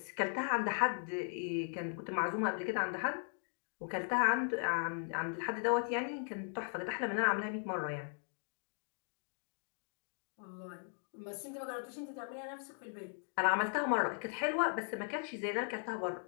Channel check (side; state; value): right; silent; 52 dB below the other